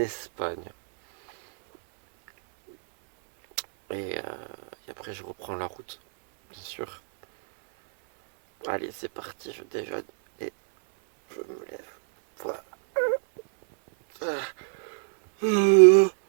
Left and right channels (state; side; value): silent; left; 60 dB below the other